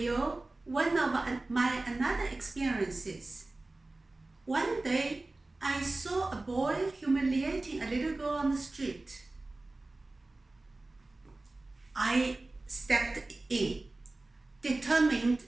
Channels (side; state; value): left; quieter; 3.0 dB